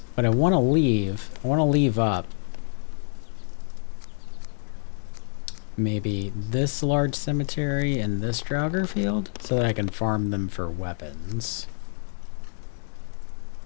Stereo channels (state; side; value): silent; right; 59 dB below the other